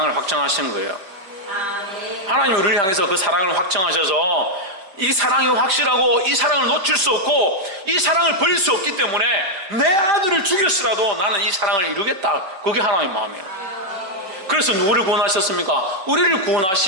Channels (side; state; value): left; late; 5.1 ms